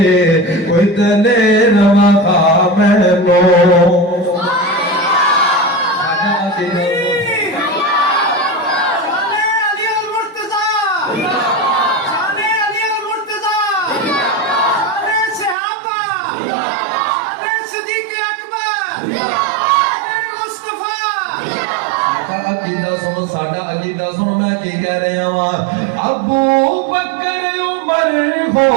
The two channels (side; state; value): left; drops out; at 15.6 s